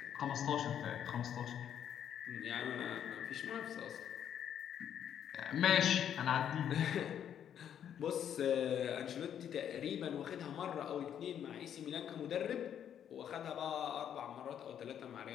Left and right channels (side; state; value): right; quieter; 9.4 dB